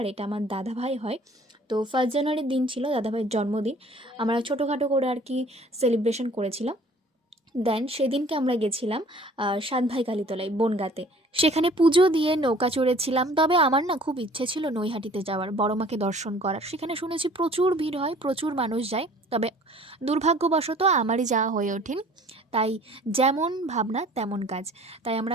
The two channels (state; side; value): normal; both; correlation 0.52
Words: এটা আমার দাদাভাই হয়। তো 1 জানুয়ারির দিন ছিল দাদাভাইয়ের জন্মদিন। আমরা ছোটোখাটো করে আর কি সেলিব্রেশন করেছিলাম। দেন সেদিনকে আমরা গেছিলাম সাতভাই কালীতলায় বনগাঁতে। সেখানে পুজো দিয়ে নৌকা চড়েছিলাম। তবে আমার না খুব ইচ্ছে ছিল নৈহাটিতে যাওয়ার, বড় মাকে দর্শন করার। সেখানে শুনেছি প্রচুর ভিড় হয়, প্রচুর মানুষ যায়। তবে দুর্ভাগ্যবশত আমারই যাওয়া হয়ে ওঠেনি। তাই যেমন ভাবনা তেমন কাজ। তাই